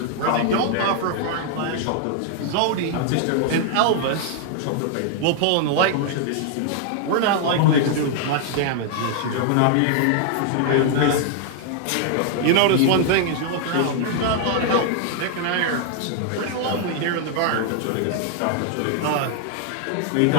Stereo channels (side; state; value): both; different; correlation 0.00